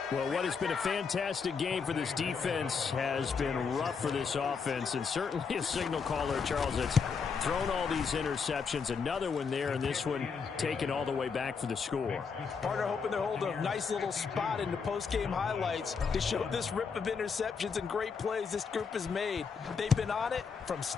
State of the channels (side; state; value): right; quieter; 5.6 dB